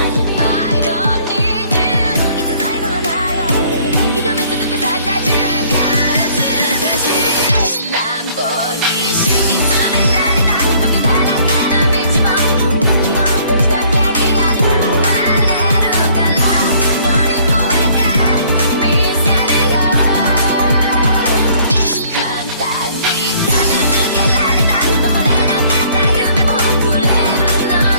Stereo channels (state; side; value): inverted; both; correlation -0.59